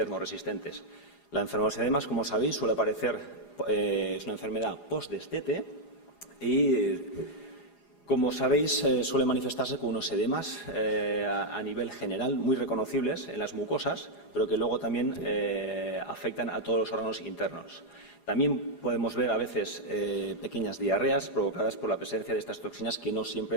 La enfermedad de los edemas, como sabéis, suele aparecer, es una enfermedad post-destete y, como sabéis, suele manifestarse con unos edemas a nivel general muy reconocibles en las mucosas, pero que luego también afectan a todos los órganos internos. También podemos ver a veces pequeñas diarreas provocadas por la presencia de estas toxinas, que no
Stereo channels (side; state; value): right; late; 4.9 ms